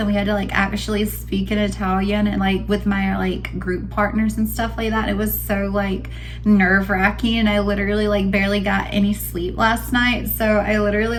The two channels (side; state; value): both; identical; correlation 1.00